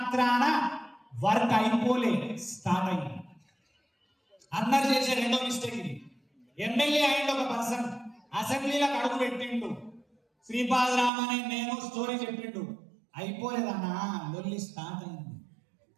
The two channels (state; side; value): drops out; left; at 11.1 s